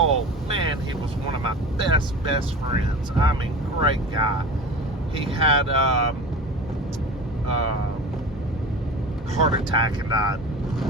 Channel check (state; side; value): normal; both; correlation 0.34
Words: Man, he was one of my best friends. I mean, great guy. He had heart attack and died.